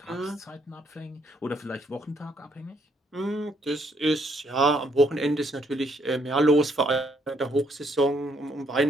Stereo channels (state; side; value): normal; both; correlation 0.70